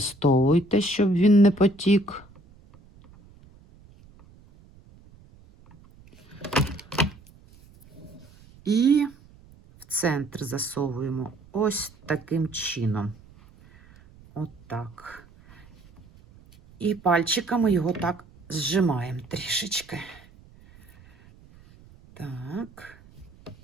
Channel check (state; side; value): noise; right; rumble, 25 dB below the sound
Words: щоб він не потік. І в центр засовуємо ось таким чином. Отак. І пальчиками його так зжимаємо трішечки. Так.